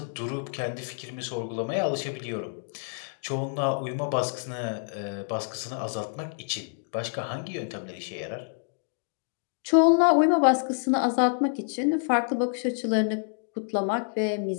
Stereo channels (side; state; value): right; silent; digital silence